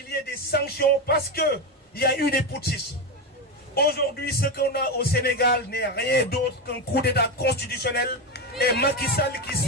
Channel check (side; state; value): both; normal; correlation 0.14